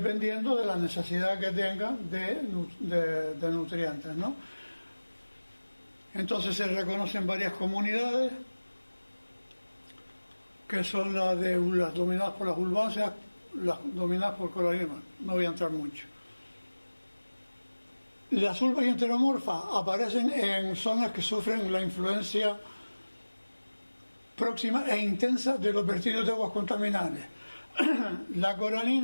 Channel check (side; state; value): both; inverted; correlation -1.00